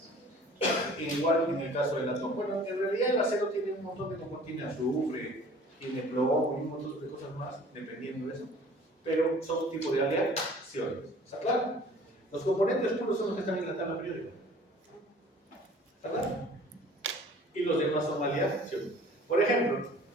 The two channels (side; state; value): both; normal; correlation 0.49